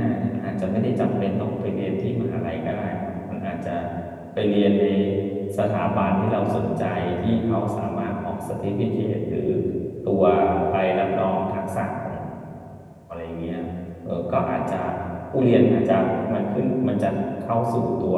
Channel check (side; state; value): both; identical; correlation 1.00